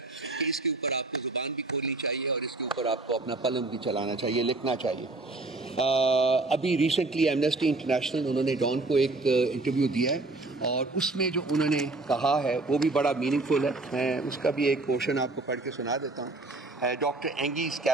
کہ اس کے اوپر آپ کو زبان بھی کھولنی چاہیے اور اس کے اوپر آپ کو اپنا قلم بھی چلانا چاہیے, لکھنا چاہیے. ابھی ریسنٹلی ایمنسٹی انٹرنیشنل انہوں نے ڈان کو ایک انٹرویو دیا ہے, اور اس میں جو انہوں نے کہا ہے وہ بھی بڑا میننگ فل ہے. میں اس کا بھی ایک پورشن آپ کو پڑھ کے سنا دیتا ہوں. ڈاکٹر اینگیز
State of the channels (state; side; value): quieter; left; 3.1 dB